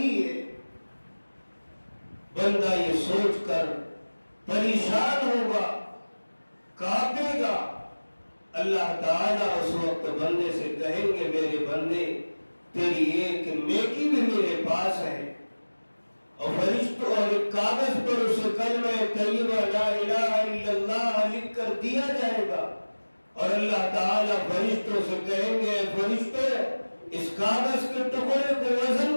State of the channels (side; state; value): both; inverted; correlation -1.00